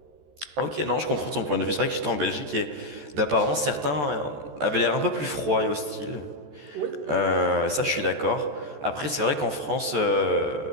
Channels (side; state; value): left; late; 14 ms